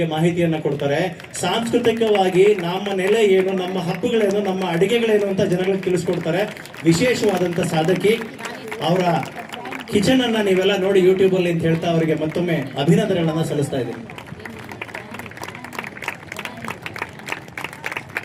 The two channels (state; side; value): identical; both; correlation 1.00